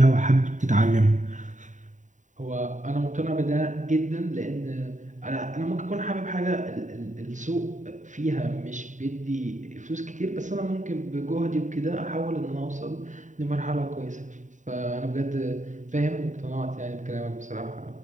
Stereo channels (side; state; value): left; late; 0.36 ms